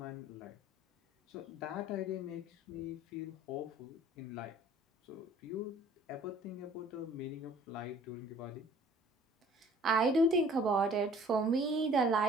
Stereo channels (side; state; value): both; normal; correlation 0.53